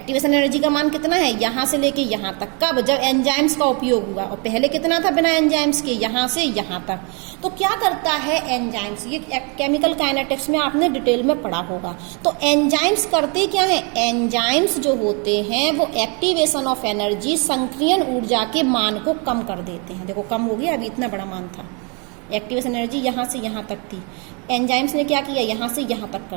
एनर्जी का मान कितना है, यहां से लेके यहां तक। कब, जब एंजाइम्स का उपयोग हुआ। और पहले कितना था बिना एंजाइम्स के, यहां से यहां तक। तो क्या करता है एंजाइम्स, ये केमिकल काइनेटिक्स में आपने डिटेल में पढ़ा होगा। तो एंजाइम्स करते क्या है, एंजाइम्स जो होते हैं वो एक्टिवेशन ऑफ एनर्जी, संक्रियण ऊर्जा के मान को कम कर देते हैं। देखो कम हो गया, अभी इतना बड़ा मान था। एक्टिवेशन एनर्जी यहां से यहां तक थी, एंजाइम्स ने क्या किया, यहां से यहां तक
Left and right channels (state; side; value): quieter; left; 34.0 dB